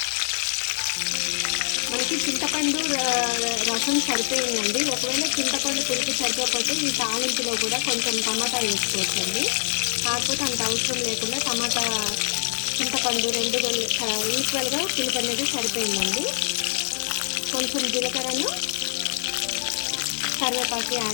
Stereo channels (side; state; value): right; silent; digital silence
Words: మనకి చింతపండు రసం సరిపోయిందండి. ఒకవేళ చింతపండు పులుపు సరిపోతే ఈ తాలింపులో కూడా కొంచెం టమాటా వేసుకోవచ్చండి. కాకపోతే అంత అవసరం లేకుండా టమాటా చింతపండు రెండు ఈక్వల్గా పులుపు అనేది సరిపోయిందండి. కొంచెం జీలకర్రను, కరివేపాకు